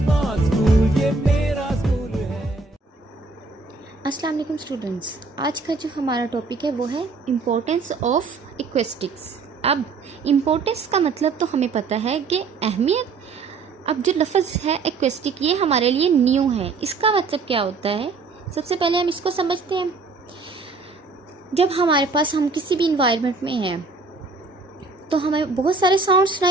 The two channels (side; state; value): left; quieter; 4.1 dB